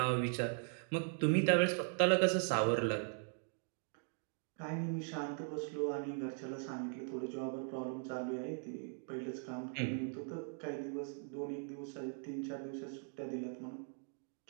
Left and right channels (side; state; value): left; silent; 51 dB below the other